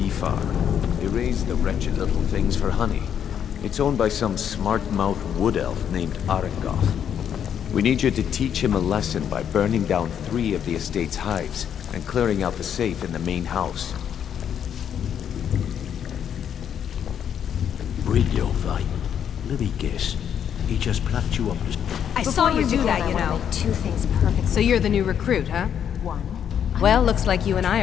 farm. They raise the wretched little things for honey. It's owned by some smart-mouthed wood elf named Arengoth. We need you to teach him a lesson by burning down 3 of the estate's hives and clearing out the safe in the main house. Brynjolf, let me guess. He just plucked you up the... I saw you do that, you know. Two things perfect. So you're the new recruit, huh? One. Well, looks like you and I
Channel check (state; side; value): quieter; right; 8.8 dB